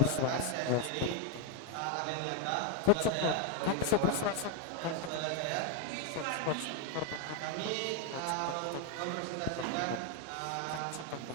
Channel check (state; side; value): different; both; correlation 0.01